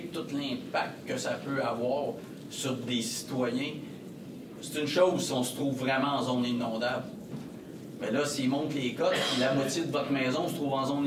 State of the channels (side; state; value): both; identical; correlation 1.00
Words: tout l'impact que ça peut avoir sur des citoyens. C'est une chose si on se trouve vraiment en zone inondable. Mais là, s'ils montent les cotes, la moitié de votre maison se trouve en